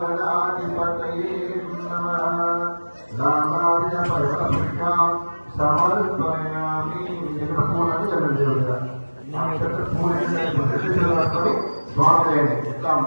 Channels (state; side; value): inverted; both; correlation -1.00